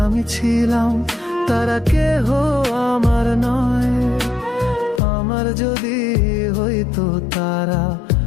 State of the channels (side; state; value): right; drops out; at 5.0 s